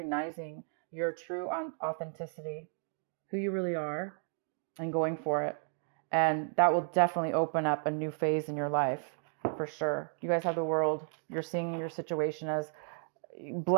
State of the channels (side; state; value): left; silent; 55 dB below the other